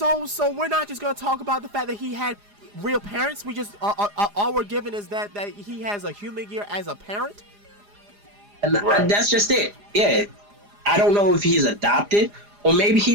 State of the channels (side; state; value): left; late; 4.9 ms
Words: we're not just gonna talk about the fact that he had real parents. We just all we're given is that he has a human gear as a parent. And Right. that's just it. Yeah. I don't know if he's adopted or maybe